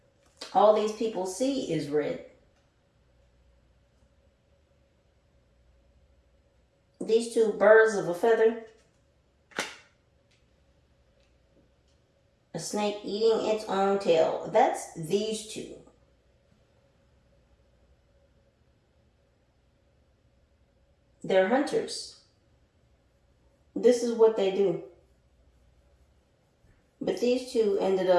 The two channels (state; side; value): identical; both; correlation 1.00